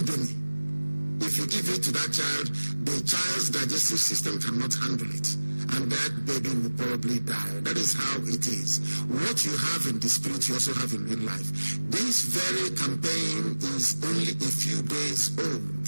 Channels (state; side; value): inverted; both; correlation -1.00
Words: If you give it to that child, the child's digestive system cannot handle it. And that baby will probably die. That is how it is. What you have in the spirit, you also have in real life. This very campaign is only a few days old.